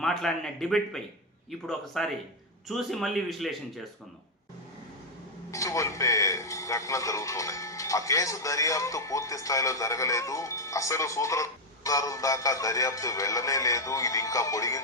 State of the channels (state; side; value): normal; both; correlation 0.01